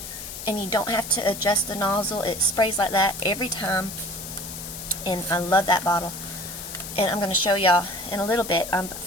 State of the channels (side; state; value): left; noise; hiss, 10 dB below the sound